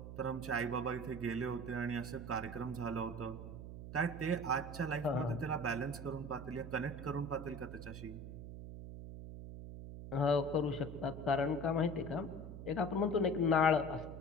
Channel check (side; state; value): right; noise; hum, 10 dB below the sound